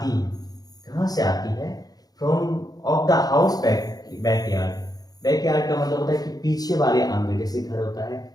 कहाँ से आती है? From of the house backyard. Backyard का मतलब होता है कि पीछे वाले आंगन, जैसे घर होता है,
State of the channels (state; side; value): late; right; 0.19 ms